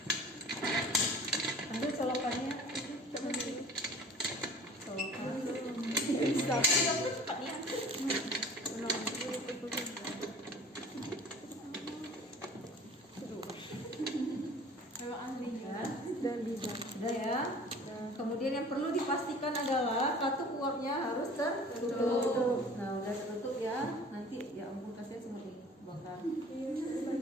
Ambil colokannya. Udah ya. Kemudian yang perlu dipastikan adalah katup uapnya harus tertutup. Nah udah tertutup ya. Nanti ya ampun kasih semua ini bakar.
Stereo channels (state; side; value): normal; both; correlation 0.45